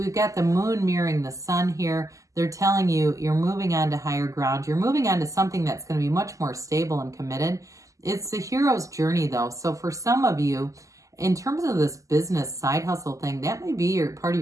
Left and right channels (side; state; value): left; late; 0.16 ms